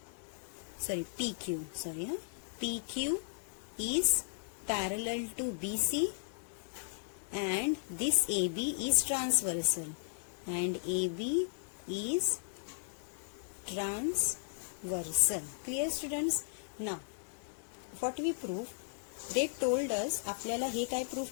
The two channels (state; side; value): silent; right; digital silence